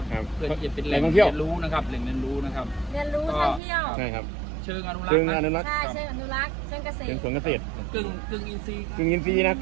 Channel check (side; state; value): left; drops out; at 3.6 s